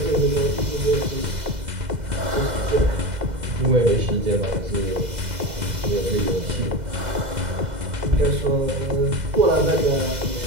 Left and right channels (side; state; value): left; late; 2.0 ms